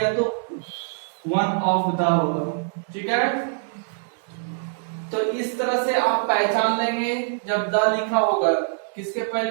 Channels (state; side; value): silent; left; digital silence